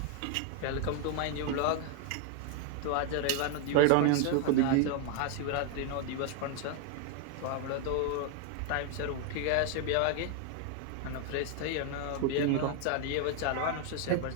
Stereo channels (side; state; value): both; different; correlation 0.00